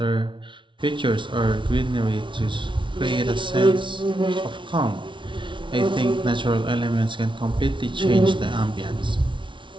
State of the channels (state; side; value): late; left; 0.24 ms